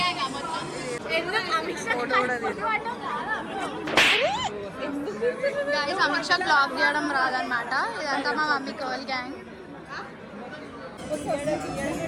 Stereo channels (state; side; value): identical; both; correlation 1.00